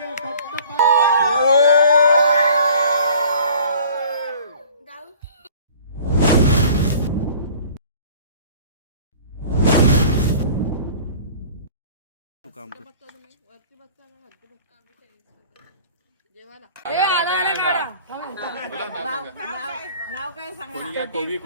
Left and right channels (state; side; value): inverted; both; correlation -0.49